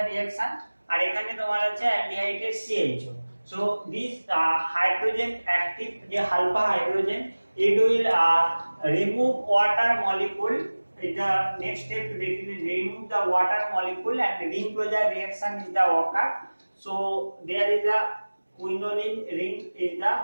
reaction, আর এখানে তোমার আছে aldehyde CHO. So this hydrogen active the alpha hydrogen, it will remove water molecule. The next step remove the water molecule, and ring closure reaction is the occur. So there is a quinoline ring is the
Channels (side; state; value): both; inverted; correlation -1.00